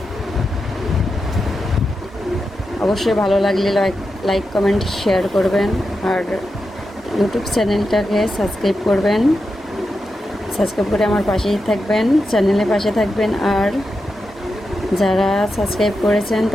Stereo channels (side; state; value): both; normal; correlation 0.88